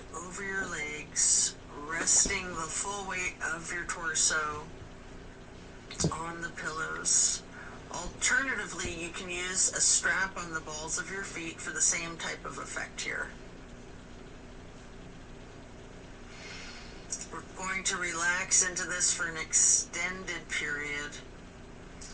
over your legs, resting the full weight of your torso on the pillows. Alternatively, you can use a strap on the balls of your feet for the same type of effect here. We're going to relax into this for an extended period.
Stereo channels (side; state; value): both; identical; correlation 1.00